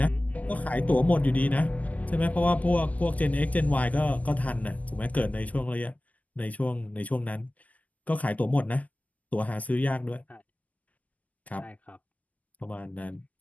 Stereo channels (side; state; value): right; late; 0.077 ms